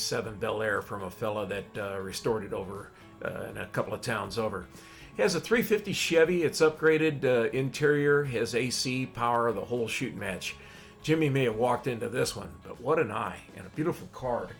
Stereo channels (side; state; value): both; identical; correlation 1.00